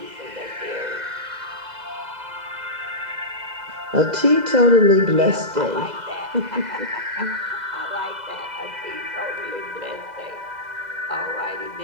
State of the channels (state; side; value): late; left; 2.0 ms